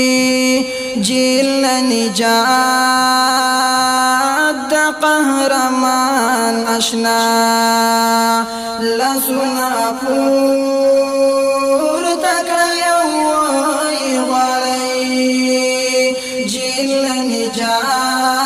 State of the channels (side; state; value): both; identical; correlation 1.00